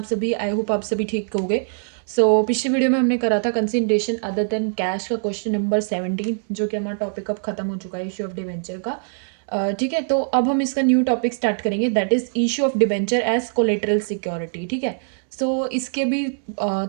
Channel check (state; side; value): silent; left; 64 dB below the other